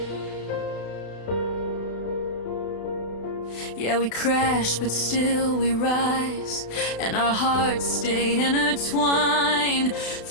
Yeah, we crash, but still we rise, and our hearts stay intertwined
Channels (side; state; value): right; late; 32 ms